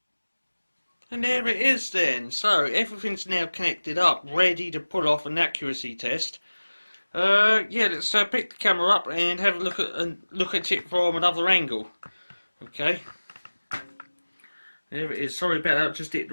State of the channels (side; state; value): both; inverted; correlation -1.00